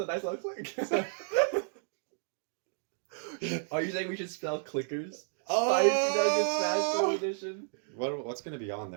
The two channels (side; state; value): left; silent; digital silence